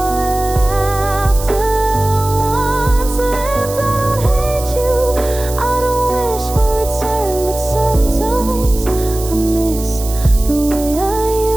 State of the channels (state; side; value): noise; right; hiss, 12 dB below the sound